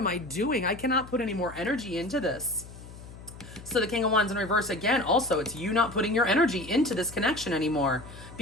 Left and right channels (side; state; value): left; noise; hum, 16 dB below the sound